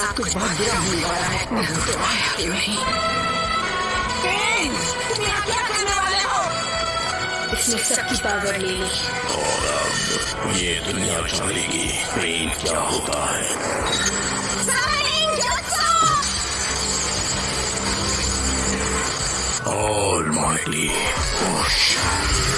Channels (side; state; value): both; identical; correlation 1.00